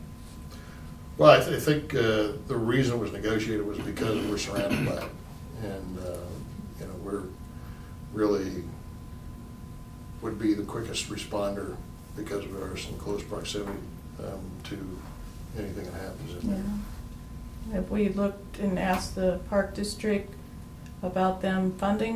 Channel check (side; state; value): both; identical; correlation 1.00